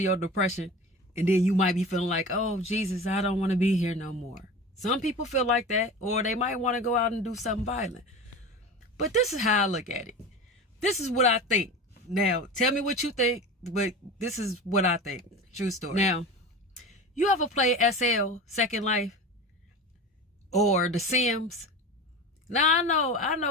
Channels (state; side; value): normal; both; correlation 0.31